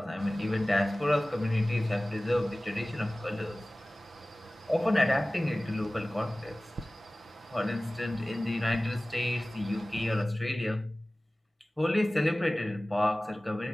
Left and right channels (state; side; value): normal; both; correlation 0.98